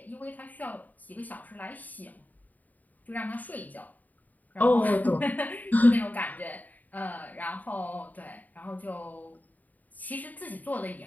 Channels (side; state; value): right; late; 0.079 ms